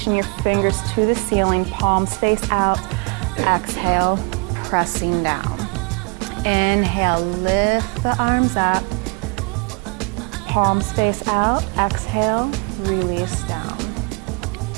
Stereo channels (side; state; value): left; quieter; 33.0 dB